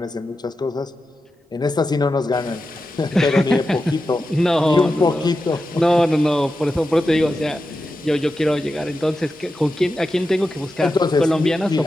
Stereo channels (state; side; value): normal; both; correlation 0.91